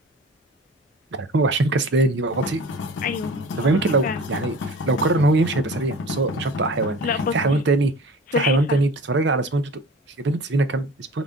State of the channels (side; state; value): both; normal; correlation 0.40